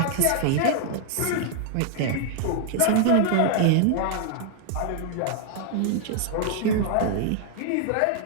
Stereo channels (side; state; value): both; different; correlation 0.00